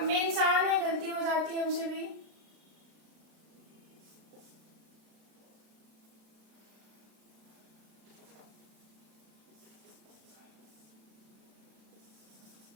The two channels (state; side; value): late; left; 36 ms